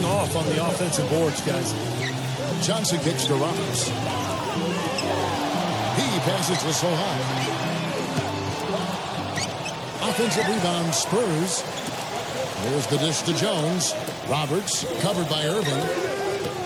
off on the offensive boards, guys. Johnson kicks to Roberts. He passes to Sohan. Offensive rebound, Spurs. There's the dish to Jones. Roberts, covered by Irving.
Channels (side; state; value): both; identical; correlation 1.00